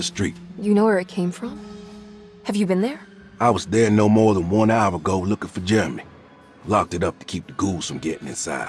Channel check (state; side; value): identical; both; correlation 1.00